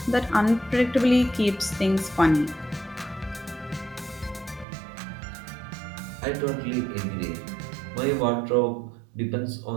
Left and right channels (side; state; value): left; drops out; at 4.7 s